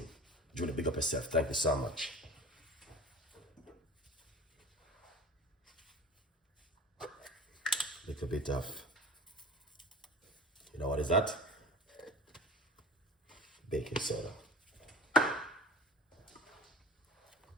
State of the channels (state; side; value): normal; both; correlation 0.37